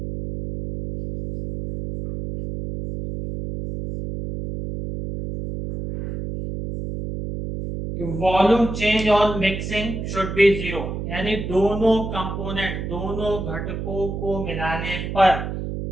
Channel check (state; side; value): noise; right; hum, 5 dB below the sound